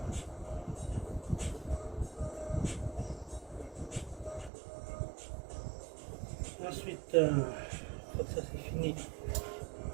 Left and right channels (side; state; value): left; drops out; at 4.5 s